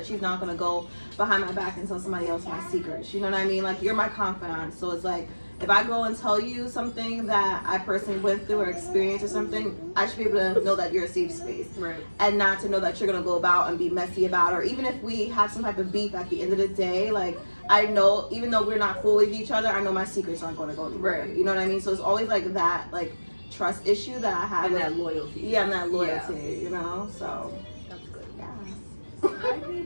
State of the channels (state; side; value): inverted; both; correlation -1.00